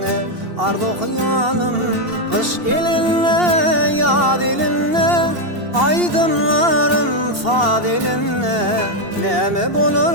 ardu hıyalım. Kış elinne yad elinne, aydımlarım fadilinne. Neme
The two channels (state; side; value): late; left; 2.8 ms